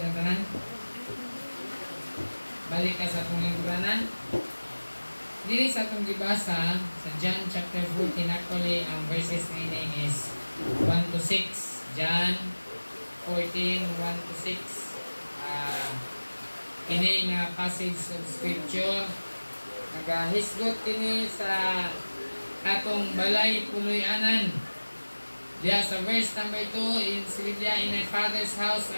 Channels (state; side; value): inverted; both; correlation -1.00